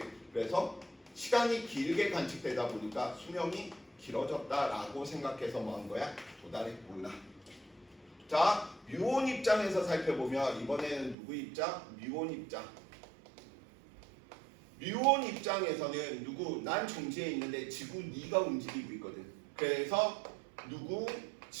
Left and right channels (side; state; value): left; drops out; at 11.2 s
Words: 그래서 시간이 길게 관측되다 보니까 수명이 길어졌다라고 생각해서 뭐 한 거야? 도달했구나. 자, 뮤온 입장에서 살펴보면 이번에는 누구 입장? 뮤온 입장. 뮤온 입장에서는 누구? 난 정지에 있는데 지구 네가 움직이고 있거든. 그래서 누구?